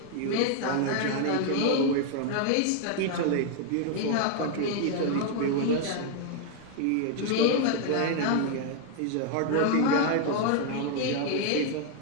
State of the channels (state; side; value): different; both; correlation 0.00